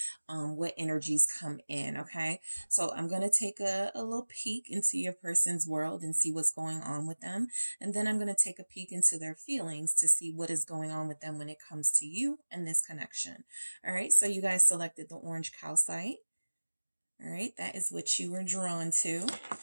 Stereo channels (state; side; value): inverted; both; correlation -1.00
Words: what energies come in. Okay. So I'm going to take a little peek into your person's world and see what's going on with them. And then I'm going to take a peek into their feelings to see what is going on with them when it comes to you and this connection. All right. So you guys selected the orange calcite. All right. That is what you were drawn to.